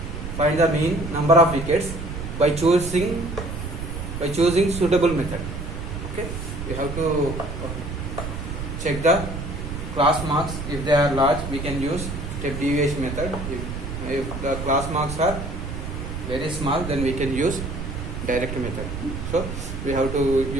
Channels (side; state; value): right; noise; rumble, 6 dB below the sound